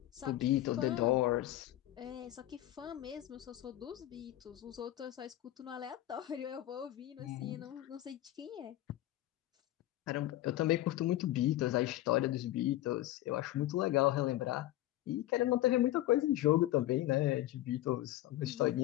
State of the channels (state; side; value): quieter; right; 14.9 dB